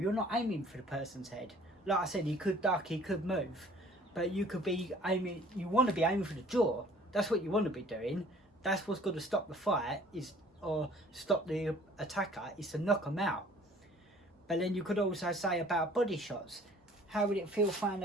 not aiming for the person's head. Like I said, he could duck, he could move, but you could be aiming, you want to be aiming for the jaw. That's what you want to be doing. That's what's going to stop the fight, or stop the attacker, is to knock them out. But then you could also say about body shots. How would it feel throwing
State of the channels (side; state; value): both; normal; correlation 0.53